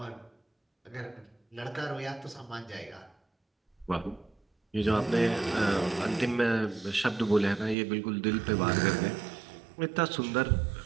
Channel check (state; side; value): drops out; left; at 7.8 s